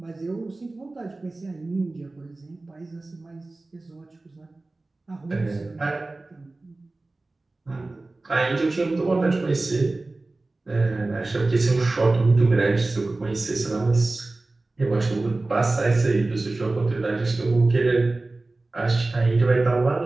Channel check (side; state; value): left; quieter; 3.1 dB